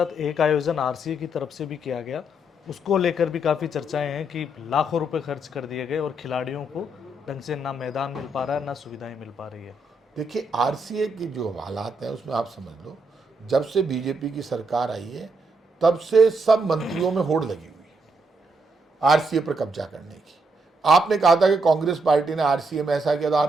एक आयोजन RCA की तरफ से भी किया गया, उसको लेकर भी काफ़ी चर्चाएं हैं कि लाखों रुपए खर्च कर दिए गए और खिलाड़ियों को ढंग से ना मैदान मिल पा रहा है, ना सुविधाएं मिल पा रही है। देखिए RCA की जो हालात हैं उसमें आप समझ लो, जब से बीजेपी की सरकार आई है तब से सब मंत्रियों में होड़ लगी हुई है RCA पर कब्जा करने की। आपने कहा था कि कांग्रेस पार्टी ने RCA में ऐसा किया, तो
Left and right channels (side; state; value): both; normal; correlation 0.77